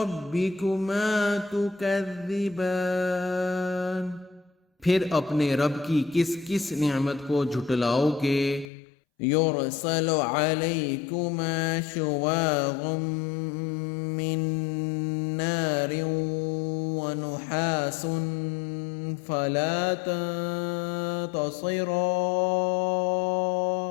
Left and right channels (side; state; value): right; drops out; at 8.7 s